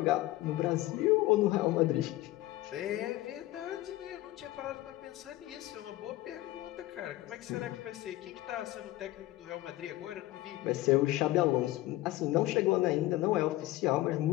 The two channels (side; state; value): right; quieter; 16.8 dB